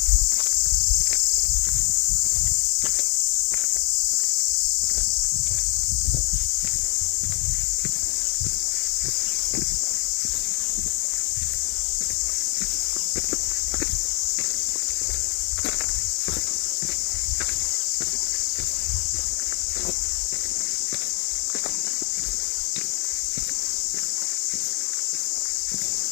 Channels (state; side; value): quieter; right; 35.2 dB